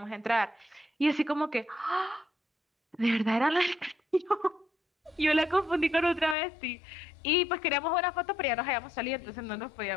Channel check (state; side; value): drops out; right; at 6.4 s